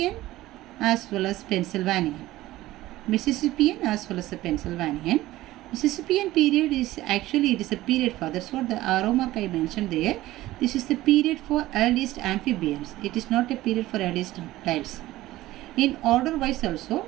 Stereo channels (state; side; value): quieter; left; 16.5 dB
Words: as well as Pennsylvanian. Mississippian as well as the Pennsylvanian. Mississippian period is actually it is a period for, that's what the arrow mark I mentioned there. This is the period for earliest amphibians. It is not a period for earliest reptiles. In order wise also,